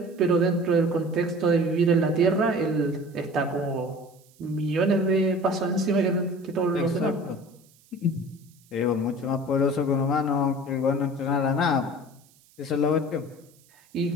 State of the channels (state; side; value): noise; right; hiss, 30 dB below the sound